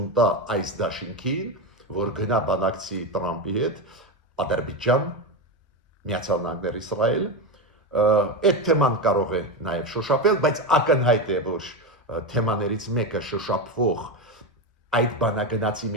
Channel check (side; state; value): both; normal; correlation 0.15